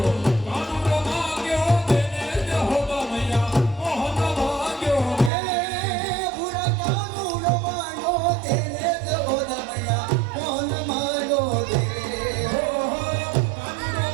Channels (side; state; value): left; drops out; at 5.3 s